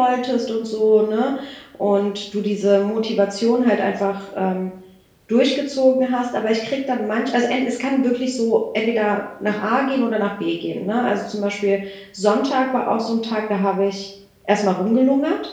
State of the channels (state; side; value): identical; both; correlation 1.00